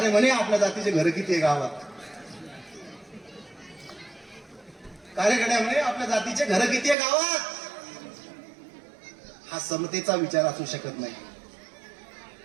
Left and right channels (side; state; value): left; drops out; at 7.0 s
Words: म्हणे आपल्या जातीचे घर किती आहे गावात. कार्यकर्त्या म्हणे आपल्या जातीचे घर किती आहे गावात. हा समतेचा विचार असू शकत नाही.